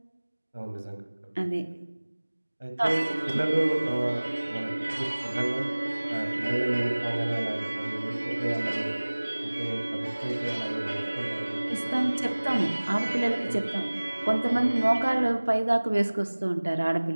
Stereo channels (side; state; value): both; inverted; correlation -1.00